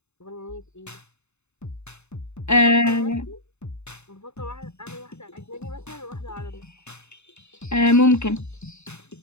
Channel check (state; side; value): late; right; 0.81 ms